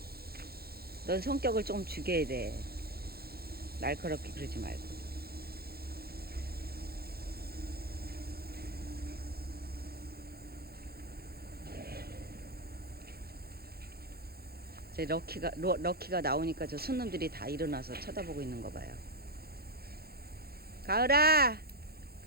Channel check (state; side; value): late; left; 0.45 ms